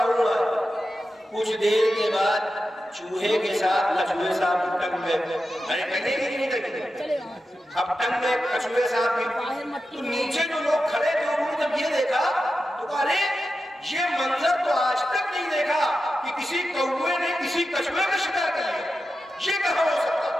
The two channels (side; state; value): both; normal; correlation 0.91